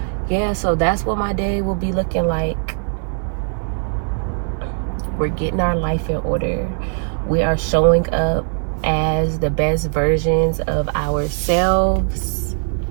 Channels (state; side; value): silent; left; digital silence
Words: yeah, so that's what my day will be looking like. We're getting our life in order. We are showing up as the best versions of ourselves.